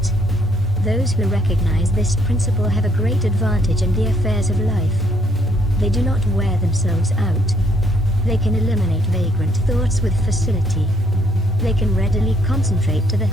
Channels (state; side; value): normal; both; correlation 0.68